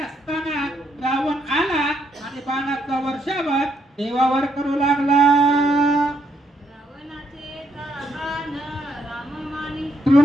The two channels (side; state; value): both; normal; correlation 0.74